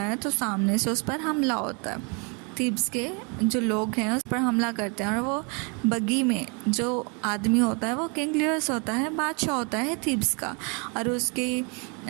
तो सामने से उस पर हमला होता है। थीब्स के जो लोग हैं उस पर हमला करते हैं और वो बगी में जो आदमी होता है वो किंग लियस होता है, बादशाह होता है थीब्स का, और उसके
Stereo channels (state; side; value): quieter; left; 34.1 dB